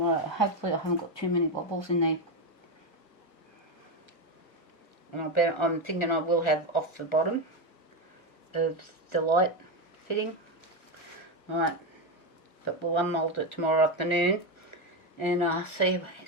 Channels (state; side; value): late; right; 1.4 ms